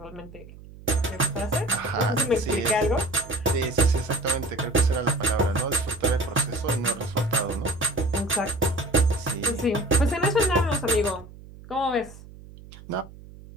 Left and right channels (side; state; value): right; noise; hum, 18 dB below the sound